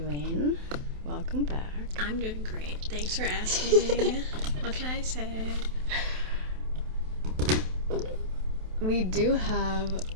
Welcome back. I'm doing great. Thanks for asking. What can I say? We do have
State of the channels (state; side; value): late; left; 27 ms